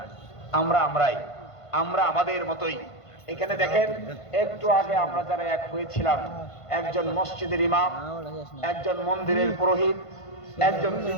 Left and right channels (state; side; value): late; right; 1.5 ms